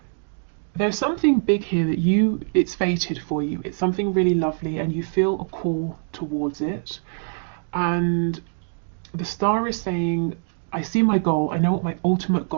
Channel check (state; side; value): silent; left; 63 dB below the other